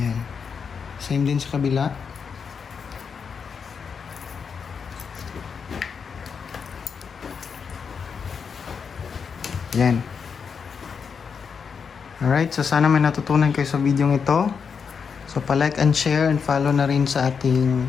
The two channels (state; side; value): quieter; right; 6.2 dB